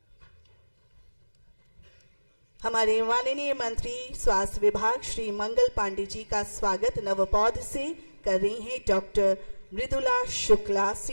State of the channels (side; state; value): both; inverted; correlation -1.00